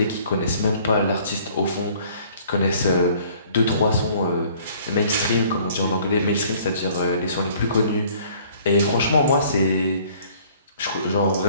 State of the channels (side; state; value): both; inverted; correlation -0.56